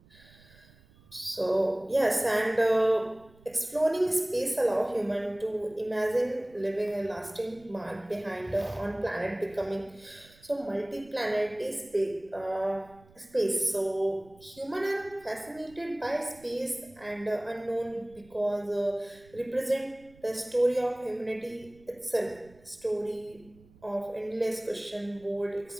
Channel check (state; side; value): noise; right; rumble, 26 dB below the sound